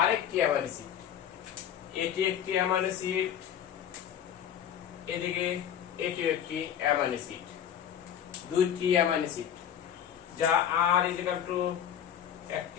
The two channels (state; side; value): quieter; right; 9.4 dB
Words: আরেকটি অ্যামাইনো অ্যাসিড। এটি একটি অ্যামাইনো অ্যাসিড, এদিকে এটিও একটি অ্যামাইনো অ্যাসিড। দুইটি অ্যামাইনো অ্যাসিড যা আর ইকুয়াল টু